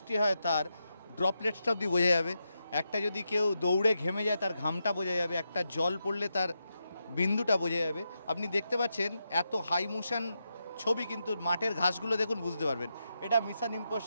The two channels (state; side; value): inverted; both; correlation -0.86